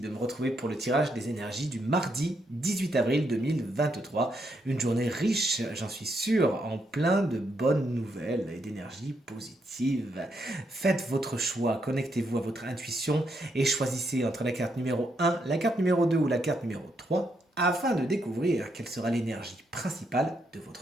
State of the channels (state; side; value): normal; both; correlation 0.78